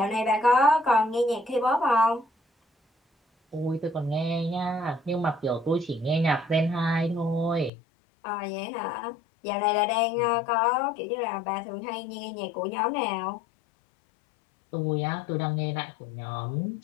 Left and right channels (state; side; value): drops out; right; at 7.7 s